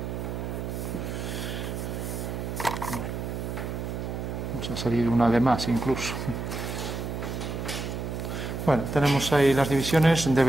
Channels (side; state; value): right; noise; hum, 4 dB below the sound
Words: Vamos a salir una de más incluso. Bueno, tenemos ahí las divisiones,